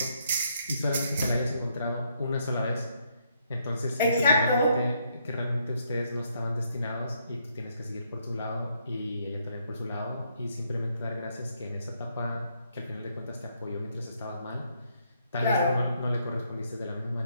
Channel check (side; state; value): both; inverted; correlation -0.73